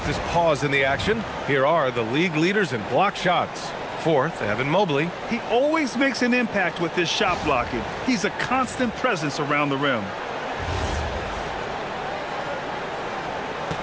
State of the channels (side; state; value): both; identical; correlation 1.00